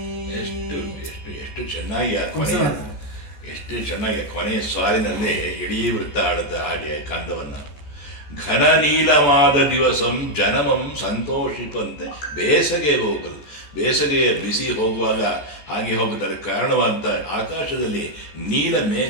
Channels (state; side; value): late; right; 14 ms